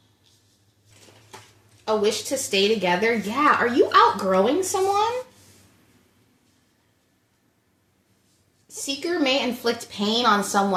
A wish to stay together. Yeah, are you outgrowing someone? Seeker may inflict pain on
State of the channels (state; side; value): identical; both; correlation 1.00